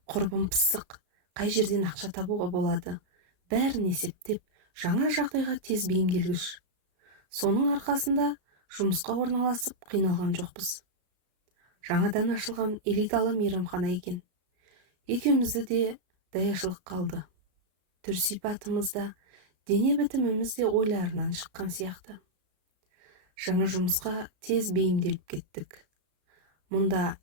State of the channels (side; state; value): left; late; 33 ms